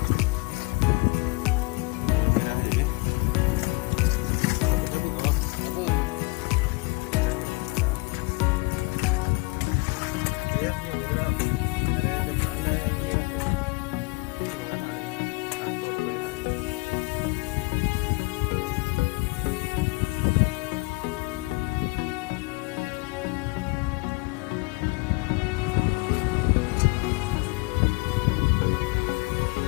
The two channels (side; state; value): right; quieter; 26.6 dB